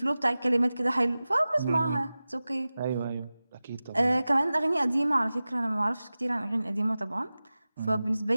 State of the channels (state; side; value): inverted; both; correlation -0.96